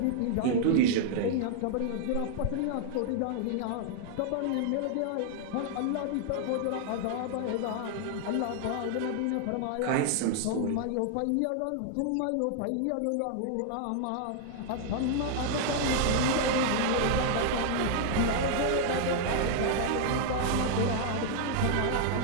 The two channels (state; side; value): different; both; correlation 0.00